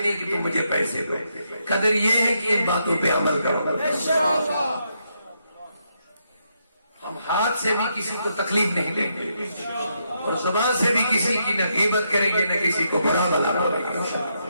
کہ تم مجھے پیسے دو قدر یہ ہے کہ ان باتوں پہ عمل کرو ہم ہاتھ سے بھی کسی کو تکلیف نہیں دیں گے اور زبان سے بھی کسی کی نہ غیبت کریں گے نہ کسی کو برا بلا بولیں گے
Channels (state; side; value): inverted; both; correlation -0.79